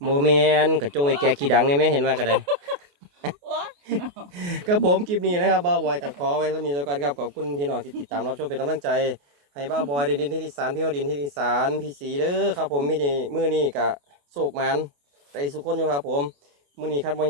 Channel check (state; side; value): late; left; 28 ms